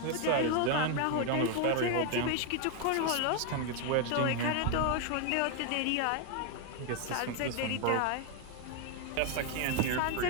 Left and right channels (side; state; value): both; different; correlation 0.01